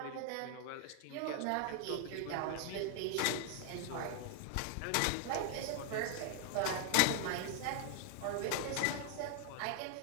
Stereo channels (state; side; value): different; both; correlation 0.00